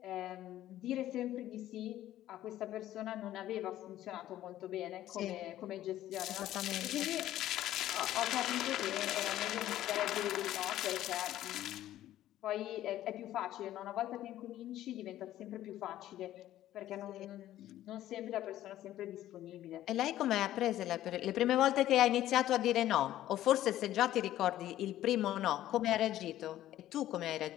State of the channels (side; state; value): right; quieter; 13.4 dB